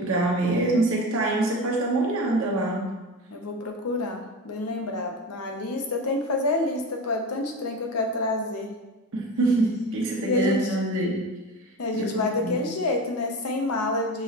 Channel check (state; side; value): normal; both; correlation 0.27